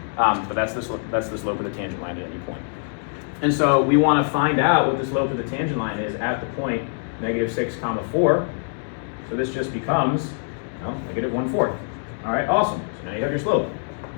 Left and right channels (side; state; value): right; silent; digital silence